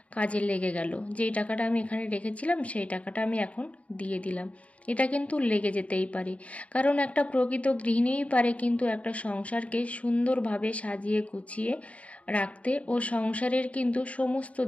কাজে লেগে গেল। যেই টাকাটা আমি এখানে রেখেছিলাম, সেই টাকাটা আমি এখন দিয়ে দিলাম, এটা কিন্তু লেগে যেতেই পারে। কারণ একটা প্রকৃত গৃহিণীই পারে কিন্তু একটা সংসারকে সুন্দরভাবে সাজিয়ে গুছিয়ে রাখতে ও সংসারের কিন্তু সমস্ত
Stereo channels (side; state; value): right; late; 0.066 ms